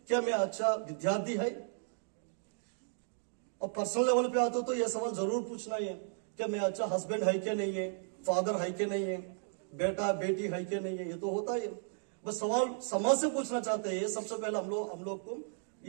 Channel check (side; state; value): left; silent; digital silence